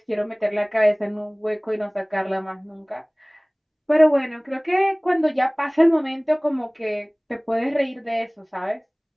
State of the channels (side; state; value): both; identical; correlation 1.00